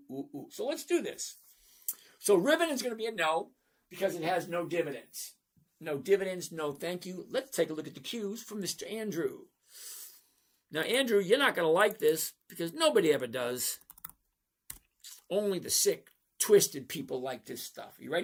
ooh, ooh. So let's do this. So Ribbon is going to be a no because it has no dividends. No dividends, no thank you. Let's take a look at the Qs from Mr. Andrew. Now, Andrew, you're not going to like this because nobody ever does. Only the sick, twisted people like this stuff. You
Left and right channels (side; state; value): both; identical; correlation 1.00